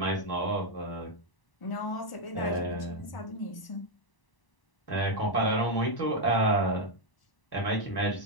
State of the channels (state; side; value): late; right; 1.0 ms